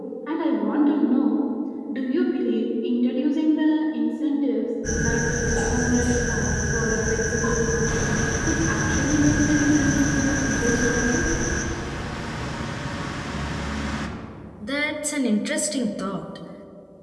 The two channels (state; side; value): identical; both; correlation 1.00